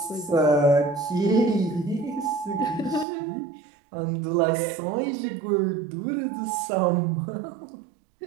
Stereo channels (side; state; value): left; drops out; at 3.1 s